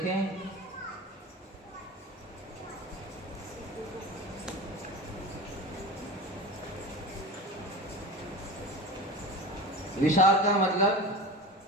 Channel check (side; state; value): both; normal; correlation 0.31